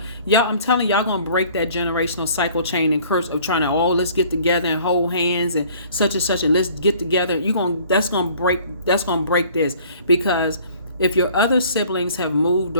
Y'all, I'm telling y'all going to break that generational cycle chain and curse of trying to, let's get together and hold hands and such and let's get together. That's going to break this, because if your other siblings have moved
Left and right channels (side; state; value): both; inverted; correlation -0.53